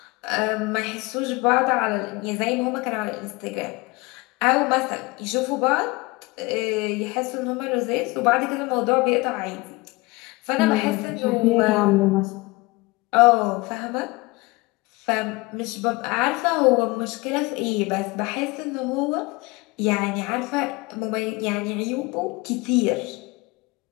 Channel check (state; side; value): quieter; right; 23.8 dB